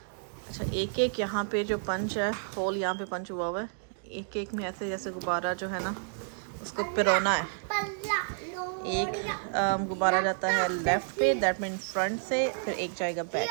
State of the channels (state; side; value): silent; left; digital silence